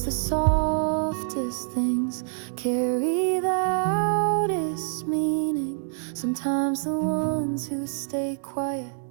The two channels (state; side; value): silent; left; 61 dB below the other